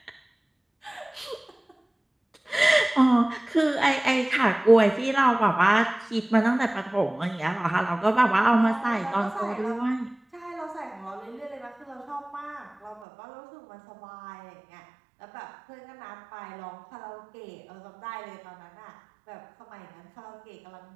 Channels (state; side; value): drops out; left; at 13.1 s